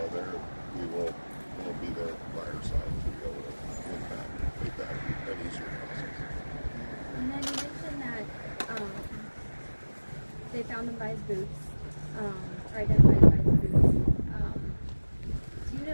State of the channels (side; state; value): both; inverted; correlation -1.00